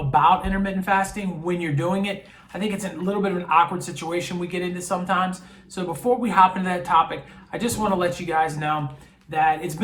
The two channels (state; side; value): identical; both; correlation 1.00